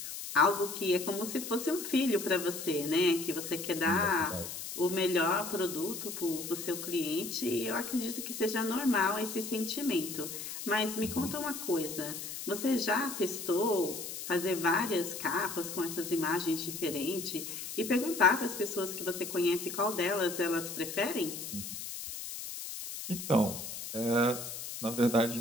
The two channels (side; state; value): left; noise; hiss, 8 dB below the sound